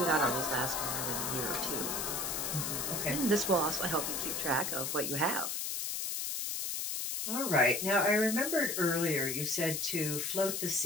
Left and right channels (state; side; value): noise; left; hiss, 2 dB below the sound